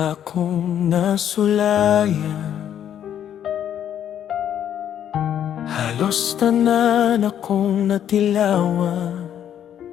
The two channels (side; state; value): right; quieter; 9.9 dB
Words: akong nasulayan. Halos tanan akong natilawan,